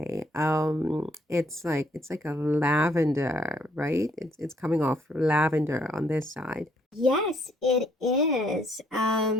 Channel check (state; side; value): normal; both; correlation 0.68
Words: It's like a lavender, right? It's coming off lavender on this side. Yes, it is.